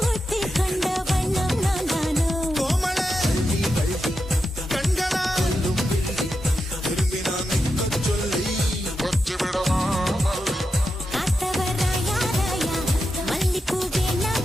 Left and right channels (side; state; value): both; normal; correlation 0.88